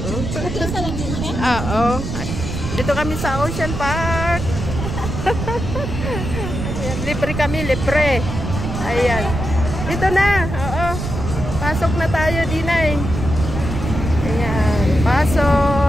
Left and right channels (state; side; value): noise; right; rumble, 5 dB below the sound